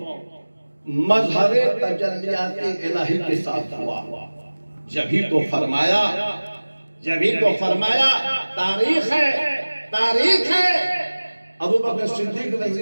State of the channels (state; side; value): inverted; both; correlation -1.00